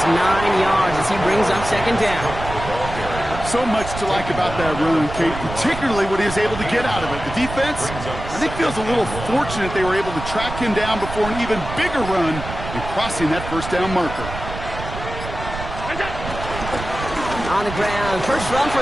9 yards as he brings up 2nd down. So much to like about that run, Kate, particularly what he was able to get out of it. The defense, I think, feels a little fortunate they were able to track him down before an even bigger run and crossing that 1st down marker. On the ground, 1st run for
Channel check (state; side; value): noise; right; rumble, 9 dB below the sound